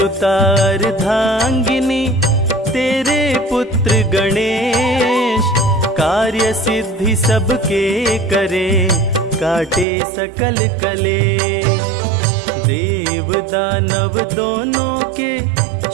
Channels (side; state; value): left; drops out; at 9.9 s